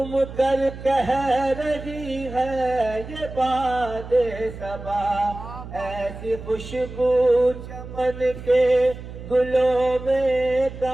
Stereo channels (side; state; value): right; noise; hum, 12 dB below the sound